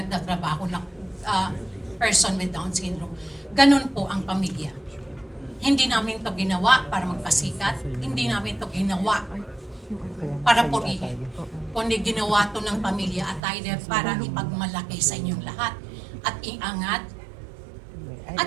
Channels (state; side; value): drops out; left; at 13.4 s